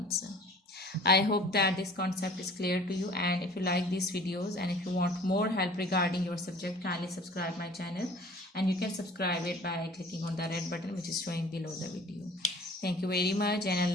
I hope that this concept is clear to you, and if you like these videos and if you want more help regarding your subject, kindly subscribe my channel, and you can subscribe it by clicking on the red button which is showing below the video. Thank you very much, and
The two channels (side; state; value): both; normal; correlation 0.48